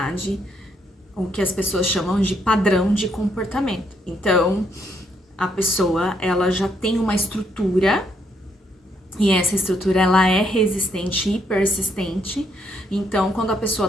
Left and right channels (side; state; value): both; normal; correlation 0.73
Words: o que as pessoas chamam de padrão de comportamento. Então, a pessoa, ela já tem uma estrutura, e essa estrutura, ela é resistente e persistente. Então, quando a pessoa